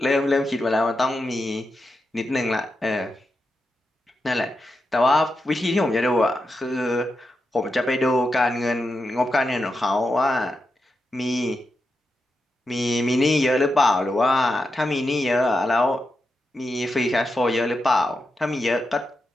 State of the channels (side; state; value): both; normal; correlation 0.87